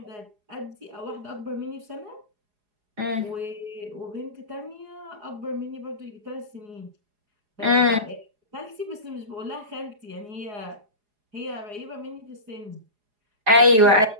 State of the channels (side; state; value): left; late; 4.7 ms